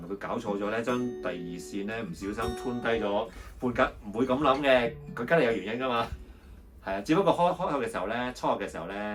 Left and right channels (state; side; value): identical; both; correlation 1.00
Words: 佢搞錯咗咧？將第二線咧唔小心 tune 低咗半格，唔會咁諗嘅，佢梗係有原因㗎嘛。係啊，只不過開口嘅時候咧，初學嘅時候